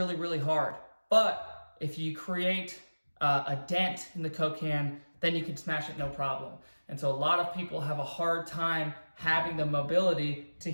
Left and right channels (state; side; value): inverted; both; correlation -1.00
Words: really hard. But if you create a dent in the Coke can, then you can smash it no problem. And so a lot of people have a hard time having the mobility to